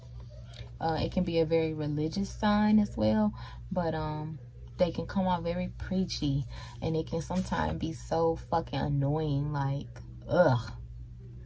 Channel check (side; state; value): both; identical; correlation 1.00